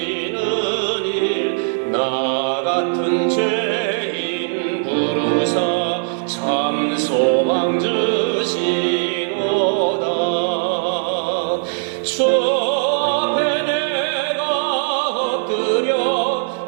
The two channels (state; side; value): silent; left; 66 dB below the other